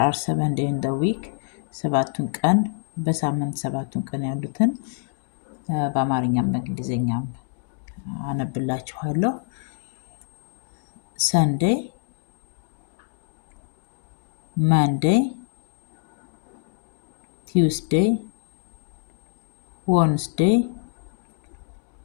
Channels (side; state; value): right; silent; digital silence